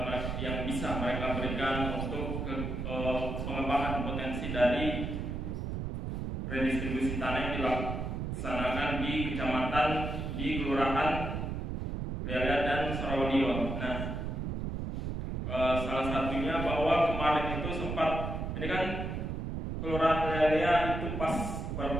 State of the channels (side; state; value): right; noise; rumble, 3 dB below the sound